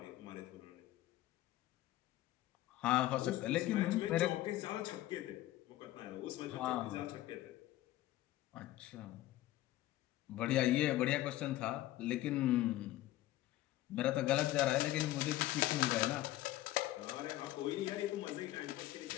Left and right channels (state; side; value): quieter; right; 15.2 dB